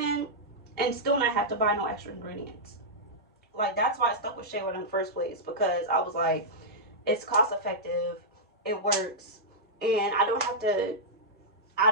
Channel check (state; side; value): normal; both; correlation -0.09